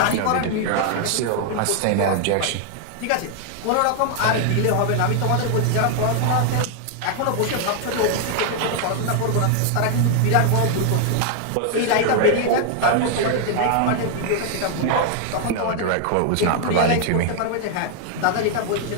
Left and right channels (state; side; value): different; both; correlation 0.00